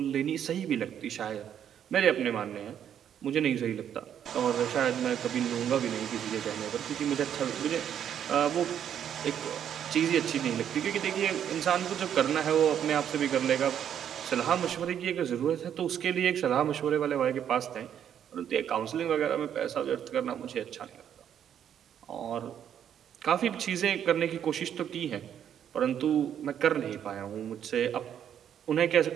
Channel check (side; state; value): left; quieter; 9.3 dB